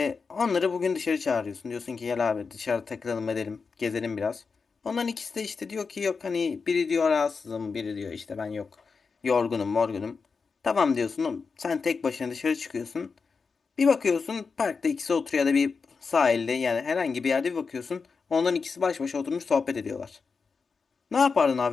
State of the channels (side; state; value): right; quieter; 5.0 dB